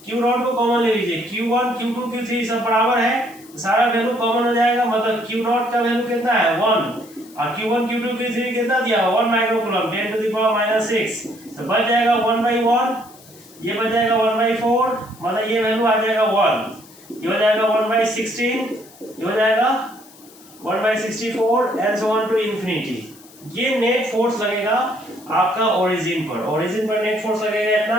Q0 को कॉमन ले लीजिए, Q1 Q2 Q3 सब बराबर है, सारा वैल्यू कॉमन हो जाएगा, मतलब Q0 का वैल्यू कितना है 1 और Q1 Q2 Q3 कितना दिया 1 माइक्रोकूलम 10 टू द पावर -6, तो बच जाएगा 1/1, ये बच जाएगा 1/4, मतलब ये वैल्यू आ जाएगा 1, ये हो जाएगा 1/16, ये हो जाएगा 1/64 and so on to infinity. ये नेट फोर्स लगेगा आपका ओरिजिन पर नेट फोर्स लगेगा इतना।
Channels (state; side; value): noise; left; hiss, 24 dB below the sound